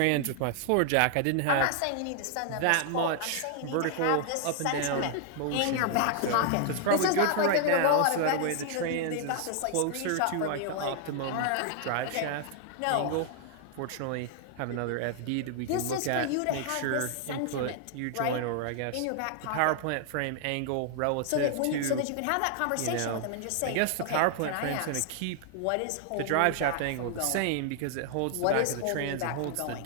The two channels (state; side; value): different; both; correlation 0.00